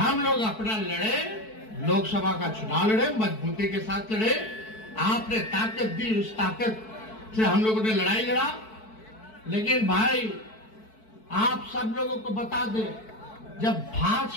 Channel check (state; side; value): late; right; 4.6 ms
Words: लोग अपना लड़े, लोकसभा का चुनाव लड़े, मजबूती के साथ लड़े, आपने ताकत दी, उस ताकत से हम लोगों ने लड़ाई लड़ा। लेकिन भाई आप सब लोगों को बता दें, जब